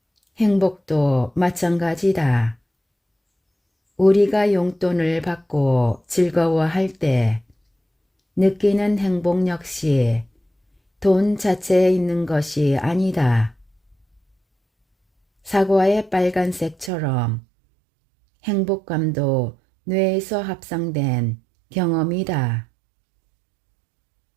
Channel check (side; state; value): left; drops out; at 16.9 s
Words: 행복도 마찬가지다. 우리가 용돈을 받고 즐거워할 때 느끼는 행복 역시 돈 자체에 있는 것이 아니다. 사과의 빨간색처럼 행복감도 뇌에서 합성된 경험이다.